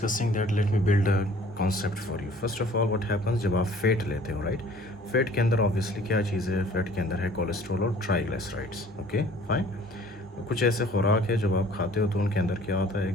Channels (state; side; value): normal; both; correlation 0.53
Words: that, let me build a concept for you. First of all, what happens जब आप fat लेते हो, right? Fat के अंदर obviously क्या चीज़ है? Fat के अंदर है कोलेस्ट्रॉल और ट्राइग्लिसराइड्स. Okay, fine. कुछ ऐसे खुराक है जब आप खाते हो तो उनके अंदर क्या होता है,